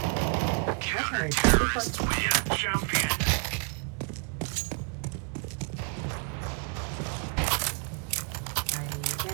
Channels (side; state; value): left; quieter; 37.8 dB